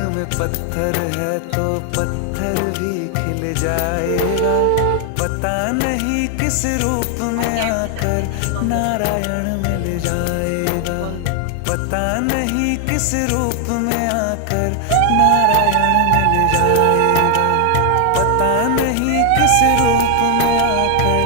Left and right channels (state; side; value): different; both; correlation 0.00